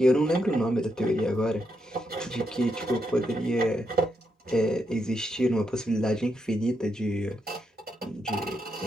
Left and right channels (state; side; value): normal; both; correlation 0.82